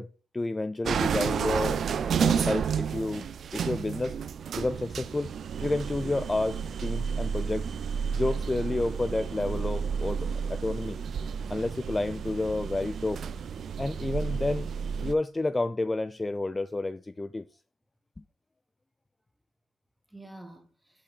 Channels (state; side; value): normal; both; correlation 0.87